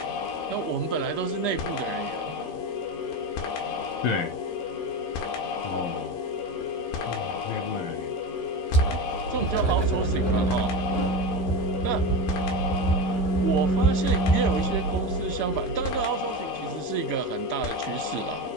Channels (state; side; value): late; right; 11 ms